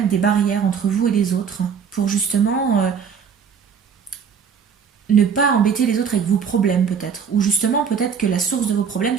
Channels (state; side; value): quieter; left; 6.7 dB